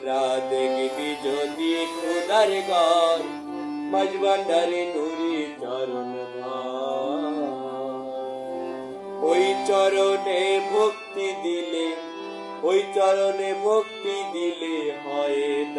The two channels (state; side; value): identical; both; correlation 1.00